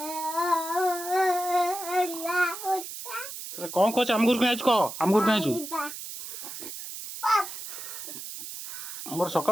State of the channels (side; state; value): right; noise; hiss, 9 dB below the sound